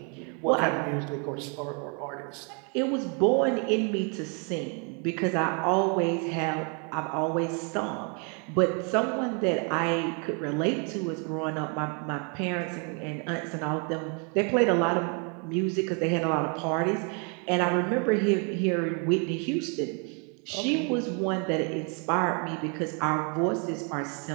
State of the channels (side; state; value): left; quieter; 36.6 dB